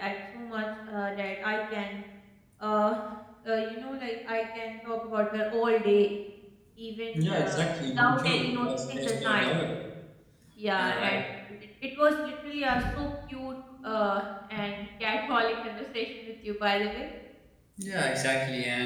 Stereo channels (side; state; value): both; identical; correlation 1.00